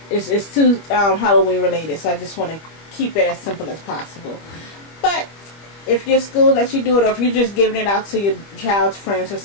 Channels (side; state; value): right; late; 25 ms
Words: It's too Halloween related, so I just want to keep it as simple as possible. But if your school lets you do it, or if you're just giving it out to your child's friends or